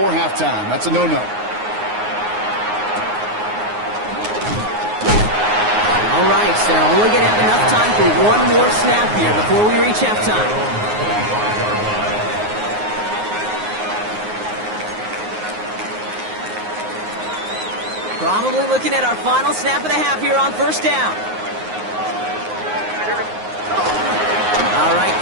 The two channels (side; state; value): left; late; 9.5 ms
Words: halftime. That's a no-no. All right, so they're only going to have enough time for 1 more snap here before we reach halftime. Probably looking at our final snap of the half here on 1st down. All right,